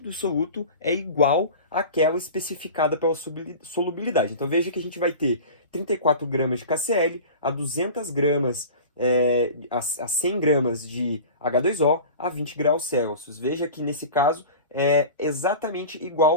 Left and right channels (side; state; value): both; inverted; correlation -0.36